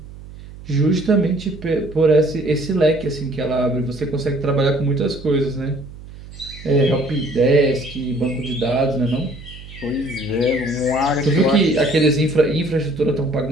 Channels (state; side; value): noise; right; hum, 16 dB below the sound